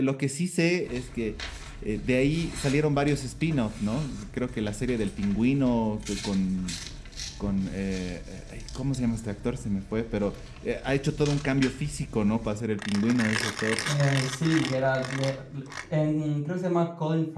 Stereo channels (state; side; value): identical; both; correlation 1.00